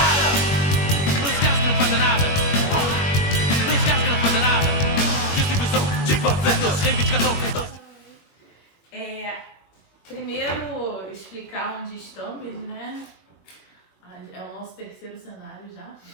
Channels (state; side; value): late; right; 21 ms